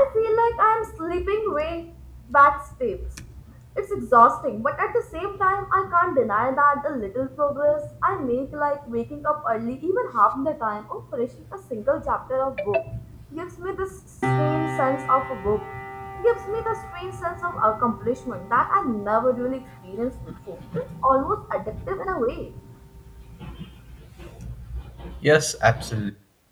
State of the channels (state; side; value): identical; both; correlation 1.00